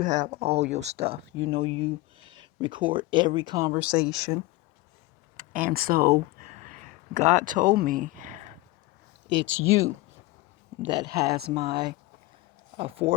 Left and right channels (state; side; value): quieter; right; 20.2 dB